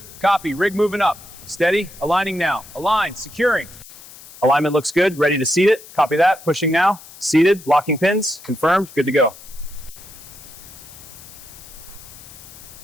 Copy, rig moving up. Steady, aligning now. Align, securing. Alignment looks good. Ready to seat it. Copy that. Pushing now. Seated. Locking pins. Confirmed. Good to go.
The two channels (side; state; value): left; noise; hiss, 19 dB below the sound